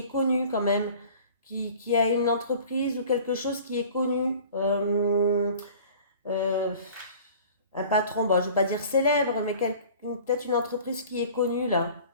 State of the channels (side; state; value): both; inverted; correlation -0.46